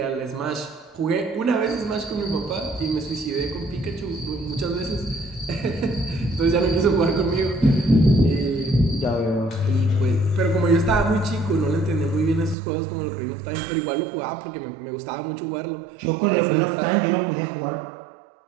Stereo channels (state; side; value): drops out; left; at 12.6 s